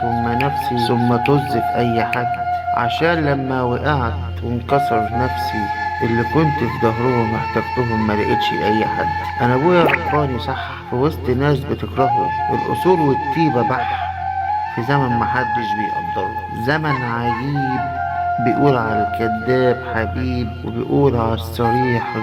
ثم نفسي ثم طز في اي حد، عشان لما وقعت وانكسر نفسي اللي كنت في ظهرهم احتجتهم ما لقيتش اي حد. انا ابويا رباني صح في وسط ناس بتكرهه، الاصول والطيبه بح في زمن محدش بيقدره، زمن عجيب بيقول على الكذاب حبيب وبيقول على الصريح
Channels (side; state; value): both; identical; correlation 1.00